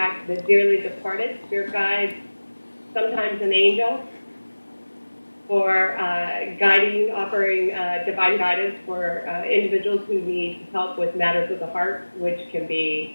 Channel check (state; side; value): inverted; both; correlation -1.00